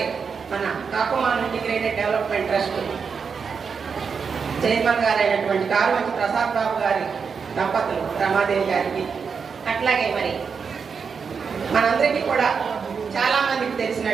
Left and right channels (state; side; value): quieter; left; 5.9 dB